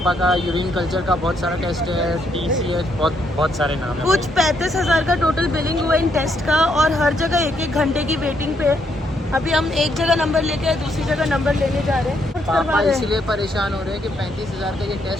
का यूरिन कल्चर का बहुत सारा टेस्ट है, TCH, बहुत सारे नाम है। कुछ 35,000 का टोटल बिलिंग हुआ इन टेस्ट का और हर जगह 1-1 घंटे की वेटिंग पे है। अभी हम एक जगह नंबर लेके आए, दूसरी जगह नंबर लेने जा रहे हैं। पापा इसलिए परेशान हो रहे हैं कि 35,000 का ये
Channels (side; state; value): both; normal; correlation 0.74